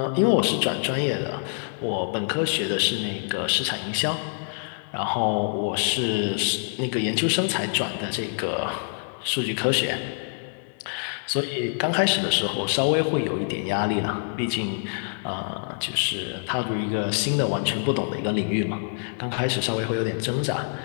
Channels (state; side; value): silent; right; 58 dB below the other